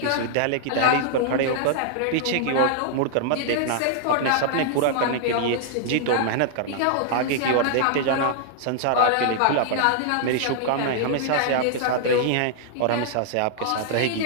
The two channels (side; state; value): both; different; correlation -0.01